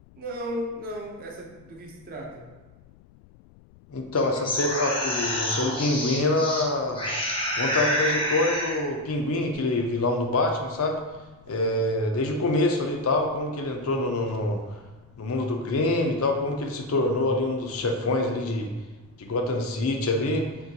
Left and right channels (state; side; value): noise; left; rumble, 26 dB below the sound